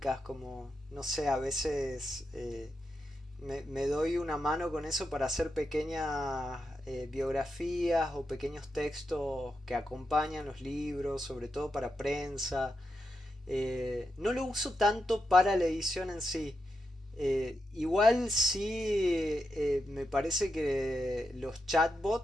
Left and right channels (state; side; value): normal; both; correlation 0.87